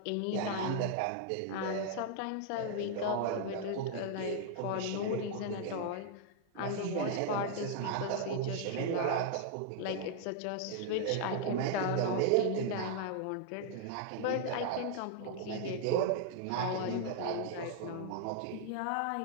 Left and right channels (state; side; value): different; both; correlation -0.01